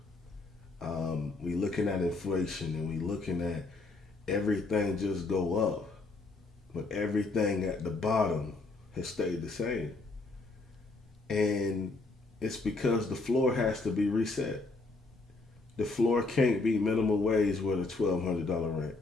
We looking at inflation and we looking at everything just go up, but everything at the bottom has stayed the same. And it's because the floor has to be reset. The floor can't be minimum wage with a $1,200 rent.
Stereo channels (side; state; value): right; quieter; 3.5 dB